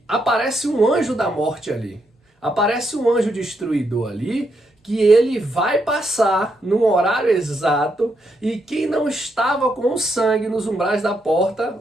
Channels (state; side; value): normal; both; correlation 0.79